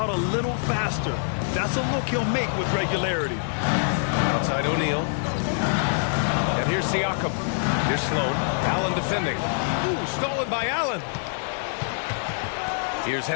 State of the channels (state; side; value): silent; right; digital silence